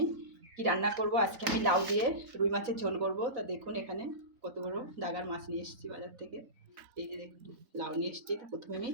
কি রান্না করব। আজকে আমি লাউ দিয়ে রুই মাছের ঝোল করব। তা দেখুন এখানে কত বড় ডাগার মাছ নিয়ে এসেছি বাজার থেকে। এই যে দেখুন লাউ নিয়ে এসেছি। তো প্রথমে আমি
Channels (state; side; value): late; left; 4.0 ms